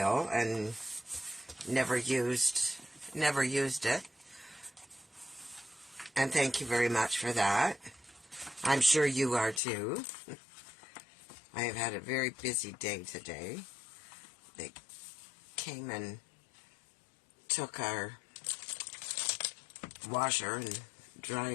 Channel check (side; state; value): right; drops out; at 9.6 s